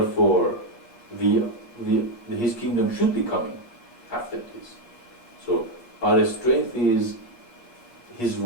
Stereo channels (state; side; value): late; right; 8.4 ms